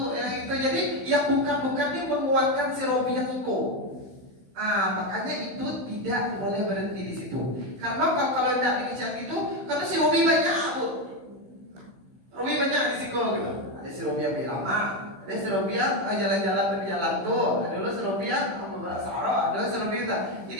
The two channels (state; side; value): late; left; 15 ms